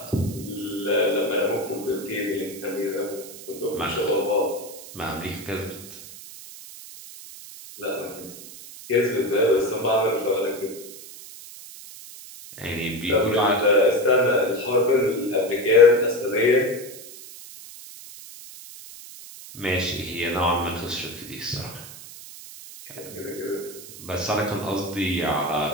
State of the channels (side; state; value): right; noise; hiss, 15 dB below the sound